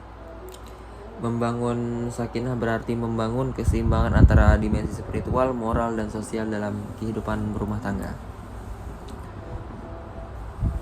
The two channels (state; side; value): identical; both; correlation 1.00